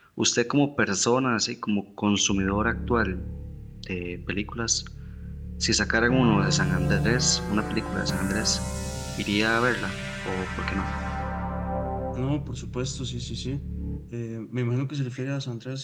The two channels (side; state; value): both; identical; correlation 1.00